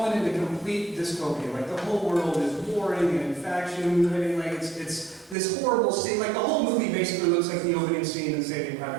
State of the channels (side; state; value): left; drops out; at 5.4 s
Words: into complete dystopia. Like the whole world is warring and faction. Like it's this horrible scene. Like the whole movie basically looks like the opening scene in Saving